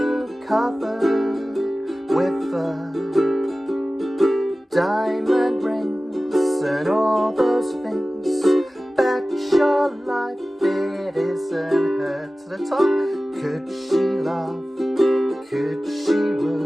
covered with diamond rings and all those things, bet your life it isn't her. To the top. Could she love? Could she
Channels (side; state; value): both; normal; correlation 0.96